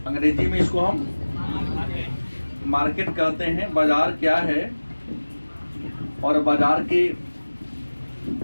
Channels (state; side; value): inverted; both; correlation -1.00